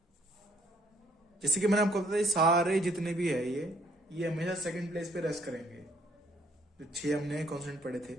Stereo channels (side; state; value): both; normal; correlation 0.65